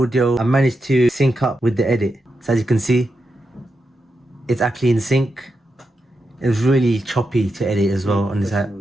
I managed to sync up with the edit. So as you can see, it's actually in sync. It was really choppy to edit as well on this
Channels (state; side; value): normal; both; correlation 0.87